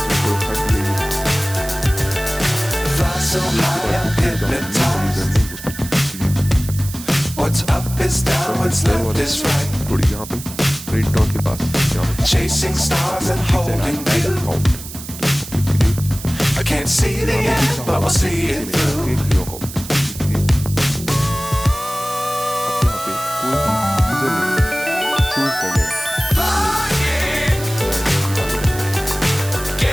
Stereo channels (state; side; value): noise; right; hiss, 12 dB below the sound